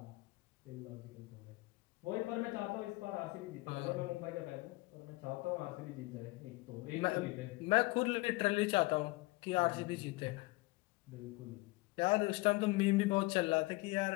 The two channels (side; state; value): right; quieter; 22.7 dB